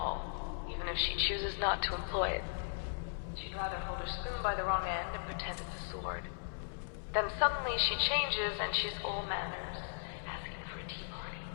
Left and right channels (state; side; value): silent; right; 53 dB below the other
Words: even if she chooses not to employ it. She'd rather hold her spoon by the wrong end and pretend it's a sword. Then suddenly she changes and she's all manners, asking for a tea party.